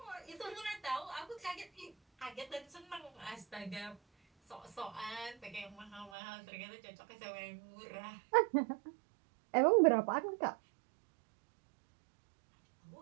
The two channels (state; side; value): drops out; left; at 6.1 s